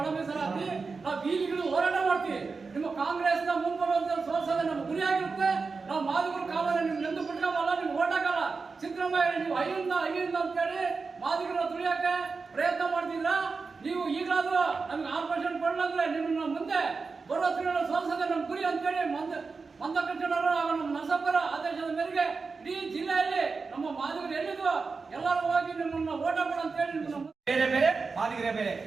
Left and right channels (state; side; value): quieter; left; 4.5 dB